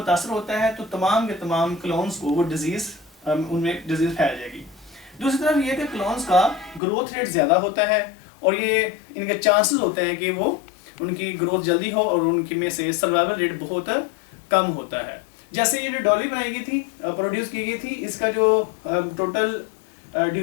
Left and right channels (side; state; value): right; drops out; at 6.8 s